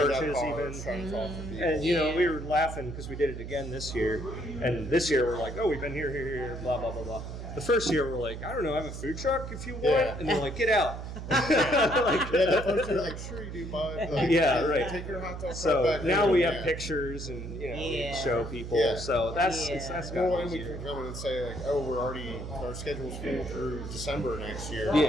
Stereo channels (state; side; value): noise; right; hum, 8 dB below the sound